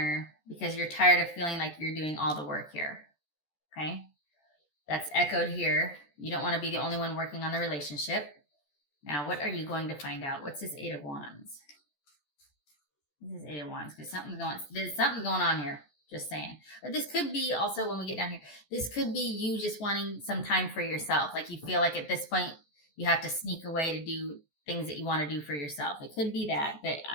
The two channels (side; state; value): right; late; 14 ms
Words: because you're tired of feeling like you're doing all the work here. Okay? That's echoed here. You don't want to be the only one working on the relationship. Now, what are you going to find out? What's this Eight of Wands? This is Eight of Wands because there's something going on here. Just saying. But this could be also when we get down here, this could be you just wanting some time for yourself. Like you feel like at this point you have to sneak away to do things that you want to do for yourself. It could be that, but